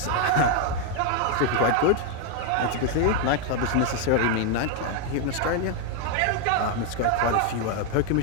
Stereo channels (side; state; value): both; different; correlation 0.01